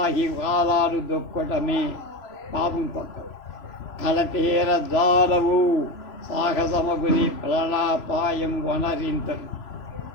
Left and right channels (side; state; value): right; late; 3.0 ms